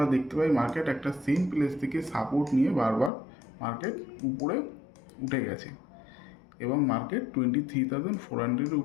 দেখতে পাই মার্কেট একটা সেম প্লেস থেকে সাপোর্ট নিয়ে বারবার মার্কেট উপরে উঠে গেছে এবং মার্কেট 23,400-এর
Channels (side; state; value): right; drops out; at 3.1 s